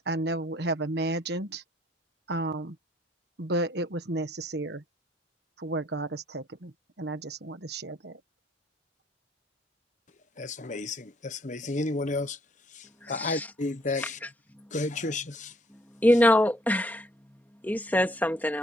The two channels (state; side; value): normal; both; correlation 0.64